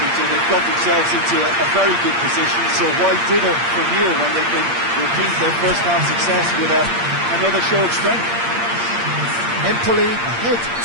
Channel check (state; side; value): late; left; 8.6 ms